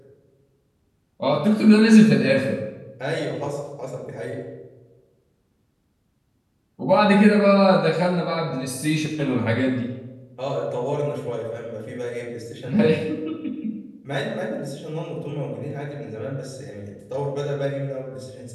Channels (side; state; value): both; identical; correlation 1.00